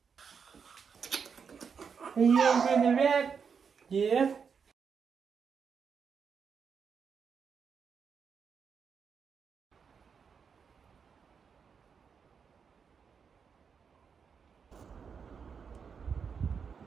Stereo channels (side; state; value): left; quieter; 6.3 dB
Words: Are you over the red? Yeah.